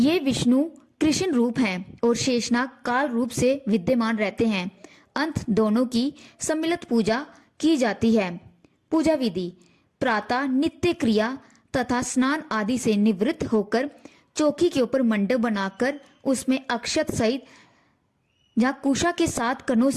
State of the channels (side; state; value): both; identical; correlation 1.00